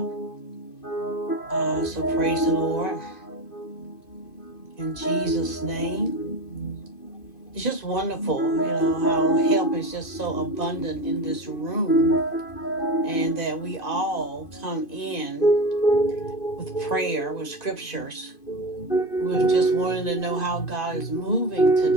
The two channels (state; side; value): late; right; 2.5 ms